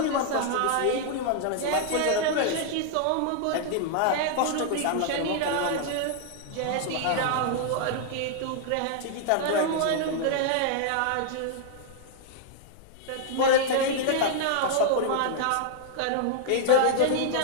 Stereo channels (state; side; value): different; both; correlation -0.01